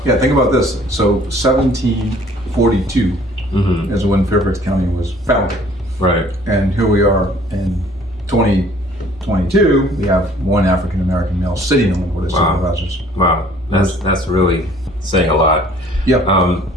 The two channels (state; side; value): normal; both; correlation 0.56